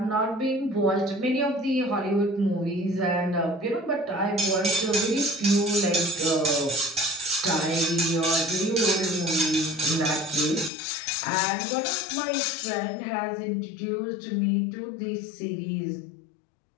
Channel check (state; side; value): drops out; right; at 10.7 s